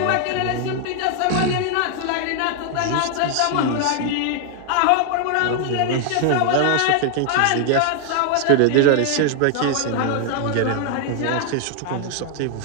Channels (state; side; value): different; both; correlation 0.00